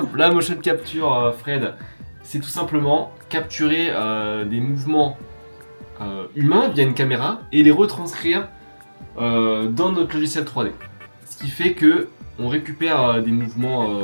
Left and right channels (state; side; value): inverted; both; correlation -1.00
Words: La motion capture, Fred, c'est tout simplement capturer des mouvements humains via une caméra et les retranscrire dans notre logiciel 3D. Ce qui fait que on récupère des